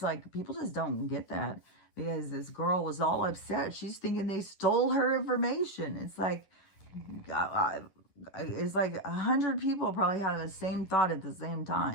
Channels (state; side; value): late; right; 11 ms